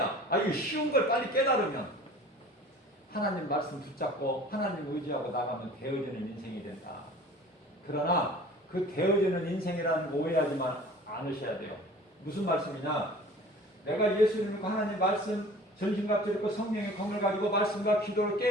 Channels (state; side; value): normal; both; correlation 0.45